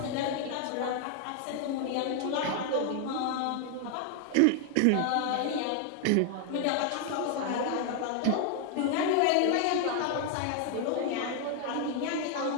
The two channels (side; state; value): both; different; correlation 0.00